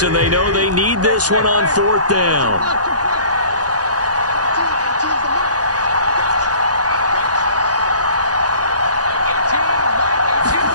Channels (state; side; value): late; left; 0.68 ms